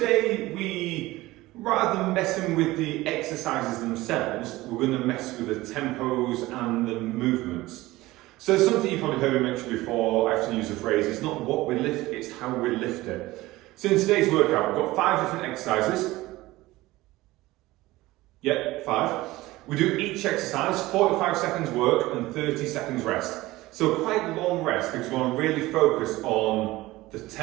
rather than messing with the exercises themselves, we're going to mess with the tempos and the movements. So something you've probably heard me mention before, I often use the phrase, it's not what we lift, it's how we lift it. So in today's workout, we've got 5 different exercises. Yep, 5. We do each exercise, 45 seconds work and 30 seconds rest. So quite long rest because we want to really focus on the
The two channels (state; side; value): quieter; left; 18.6 dB